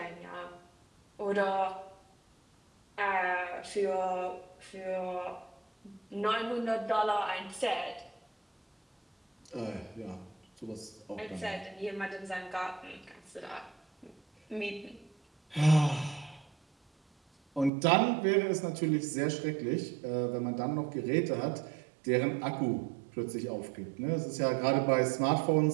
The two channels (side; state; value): left; drops out; at 17.7 s